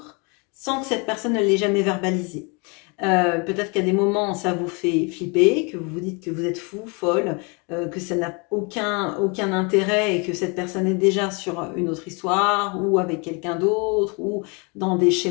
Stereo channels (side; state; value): right; quieter; 32.0 dB